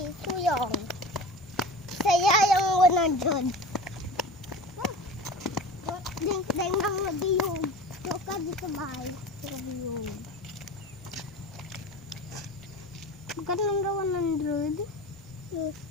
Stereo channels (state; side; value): normal; both; correlation 0.35